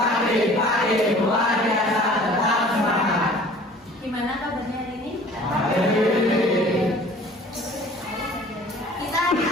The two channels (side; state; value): both; normal; correlation 0.49